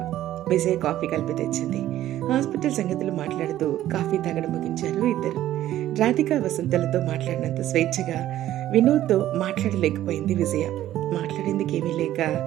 విజయ్ కాఫీ కలిపి తెచ్చింది. హాస్పిటల్ సంగతులు మాట్లాడుతూ కాఫీ తాగడం ముగించారు ఇద్దరు. రాధిక వసంతలతో మాట్లాడినంత స్వేచ్ఛగా వినోద్తో మాట్లాడలేకపోయింది విజయ. మాట్లాడేందుకేమీ లేక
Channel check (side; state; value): left; quieter; 13.3 dB